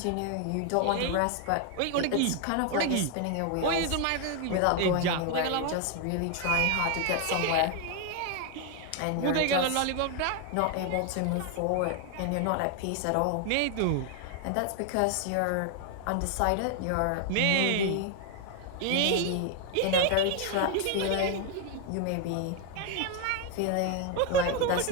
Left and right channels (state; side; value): different; both; correlation 0.01